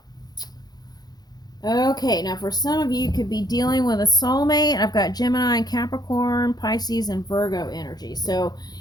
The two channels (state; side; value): late; right; 0.19 ms